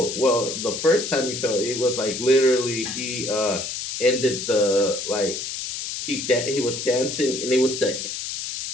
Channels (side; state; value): left; noise; hiss, 5 dB below the sound